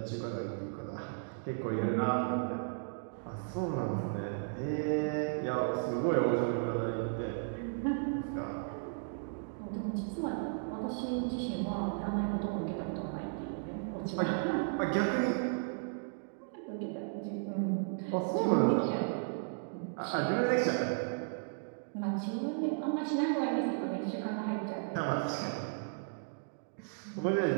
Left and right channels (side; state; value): left; silent; digital silence